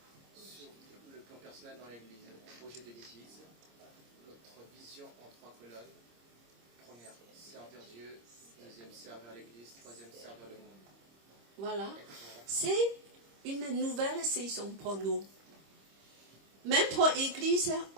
Sur le plan personnel dans l'Église, le projet de l'Église, notre vision en 3 colonnes. Première, servir Dieu. Deuxième, servir l'Église. Troisième, servir le monde. Voilà. C'est une nouvelle saison pour nous. Même pour l'Église,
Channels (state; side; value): late; left; 26 ms